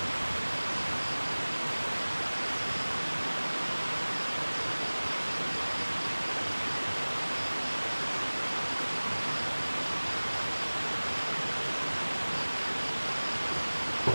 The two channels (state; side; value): inverted; both; correlation -1.00